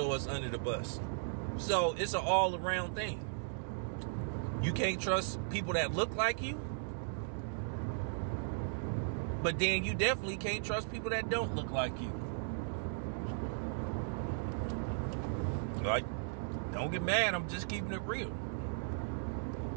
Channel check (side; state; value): left; silent; digital silence